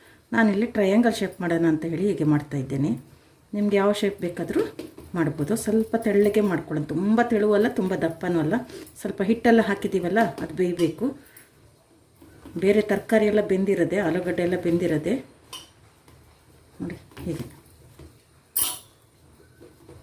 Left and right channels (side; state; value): both; identical; correlation 1.00